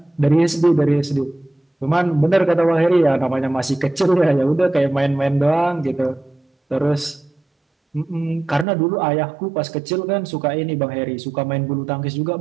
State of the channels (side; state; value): left; drops out; at 8.7 s